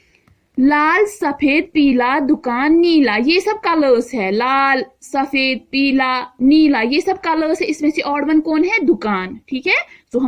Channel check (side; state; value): both; identical; correlation 1.00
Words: लाल, सफेद, पीला, दुकान, नीला, ये सब कलर्स है। लाल, सफेद, पीला, नीला, ये सब कलर्स है। इसमें से ऑड वन कौन है? दुकान। ठीक है, तो